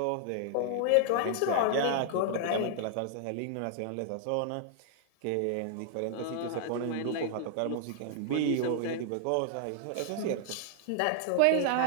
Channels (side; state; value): both; different; correlation 0.00